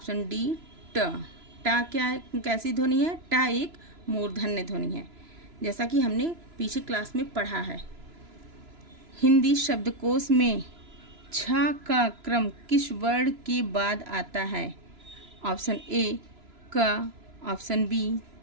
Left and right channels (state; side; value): late; left; 3.0 ms